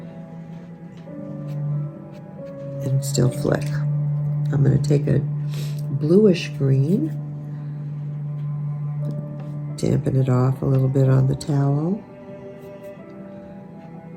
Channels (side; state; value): both; identical; correlation 1.00